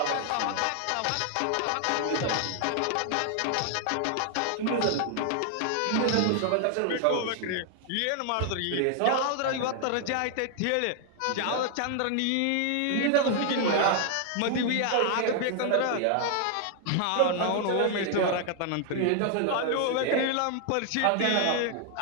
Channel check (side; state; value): both; different; correlation 0.00